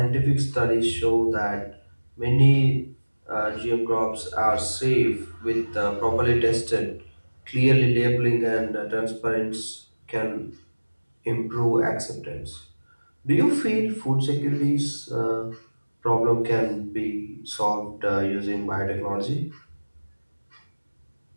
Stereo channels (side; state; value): both; inverted; correlation -1.00